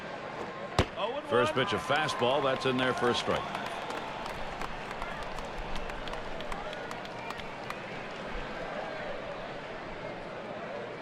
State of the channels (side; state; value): both; identical; correlation 1.00